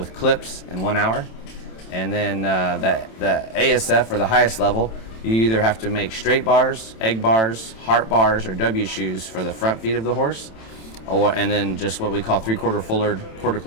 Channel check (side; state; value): right; late; 27 ms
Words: clips in 1 hour. And then the ASF, or the highest level, you either have to make straight bars, egg bars, heart bars, or W shoes for the front feet of the horse, and then just what we call 3/4 fullered,